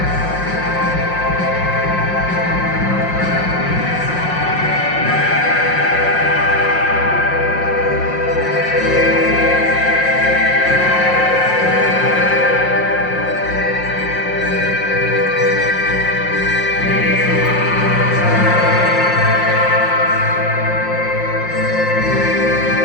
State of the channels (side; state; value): right; late; 5.6 ms